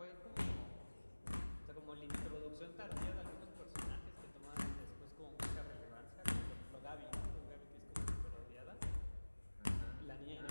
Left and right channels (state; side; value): inverted; both; correlation -1.00